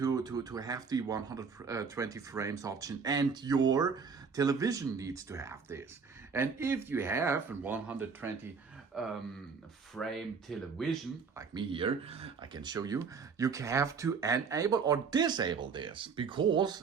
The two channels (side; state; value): left; quieter; 5.5 dB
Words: the 120 frames option, and your television needs to have this. And if you have a 120 frame television, like me here, I can show you, you have to enable or disable this,